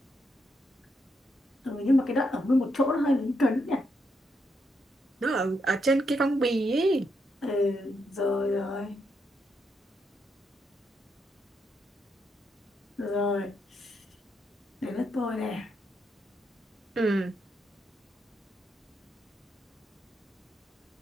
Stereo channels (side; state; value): both; normal; correlation 0.80